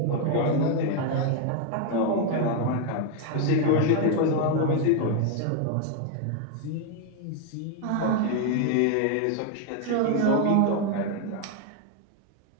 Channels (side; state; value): both; different; correlation 0.01